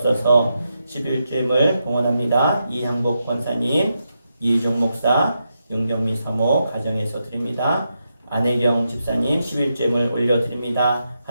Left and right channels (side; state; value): both; inverted; correlation -0.85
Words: 11주임을 봉헌합니다. 이향복 권사님, 이희종 목사, 윤경미 사모 가정에서 드립니다. 안혜경 집사님 11주임을 올려드립니다.